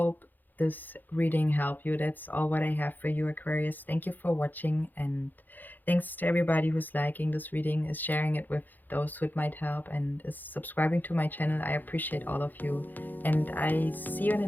this reading helped you. That's all what I have for you, Aquarius. Thank you for watching, and thanks to everybody who's liking this reading, is sharing it with those who it might help, and is subscribing to my channel. I appreciate all of you, and I see you in the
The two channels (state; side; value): late; right; 0.086 ms